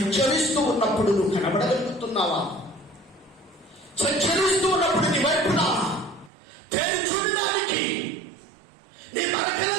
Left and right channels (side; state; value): left; drops out; at 6.3 s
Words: ఉన్నప్పుడు నువ్వు కనబడగలుగుతున్నావా? సంచరిస్తూ ఉన్నప్పుడు నీ వైపున పేరు చూడడానికి నీ